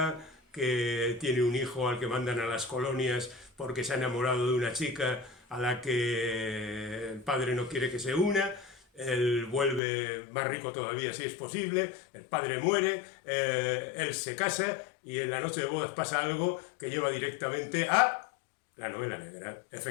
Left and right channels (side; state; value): right; drops out; at 9.8 s